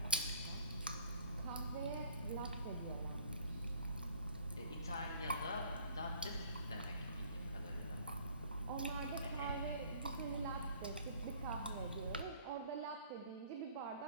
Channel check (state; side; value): inverted; both; correlation -0.55